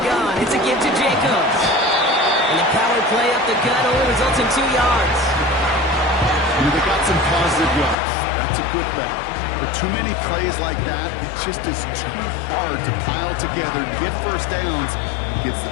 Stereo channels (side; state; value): right; drops out; at 8.0 s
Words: it's a give to Jacobs. And the power play up the gut only results in 2 yards. They got some positive yards. That's a good thing. But too many plays like that, it just is too hard to pile together to get first downs against the